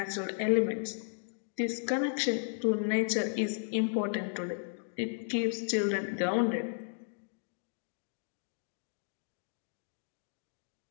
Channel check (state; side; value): silent; right; digital silence